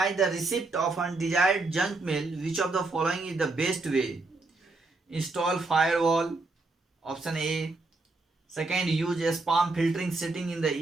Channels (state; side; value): quieter; left; 3.3 dB